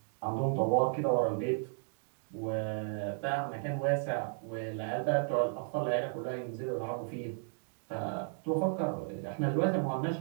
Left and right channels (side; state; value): left; silent; 55 dB below the other